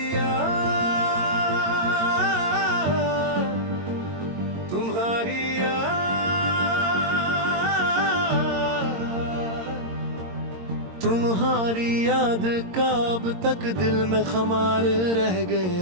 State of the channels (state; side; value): late; left; 22 ms